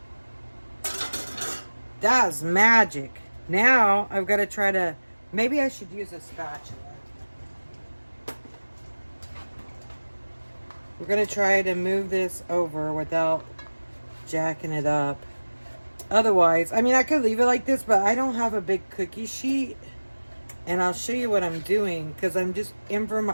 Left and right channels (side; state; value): both; inverted; correlation -1.00